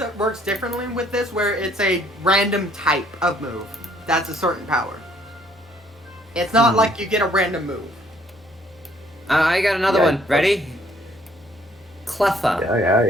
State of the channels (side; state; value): both; normal; correlation 0.63